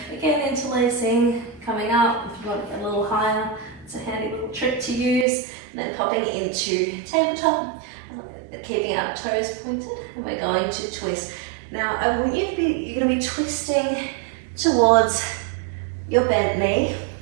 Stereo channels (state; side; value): drops out; left; at 5.2 s